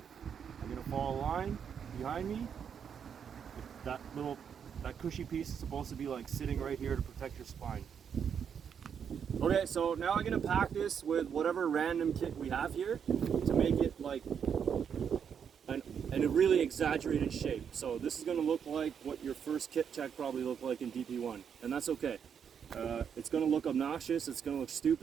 I'm gonna follow a line behind me. That cushy piece is supposed to be like sitting right here to protect your spine. Okay, so now I'm gonna pack this with whatever random kit we have here to make it like a really exaggerated shape. So this is gonna look like what your first kit check probably looked like in DP1, and that's okay. It's gonna look obnoxious, it's gonna look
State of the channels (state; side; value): quieter; left; 7.5 dB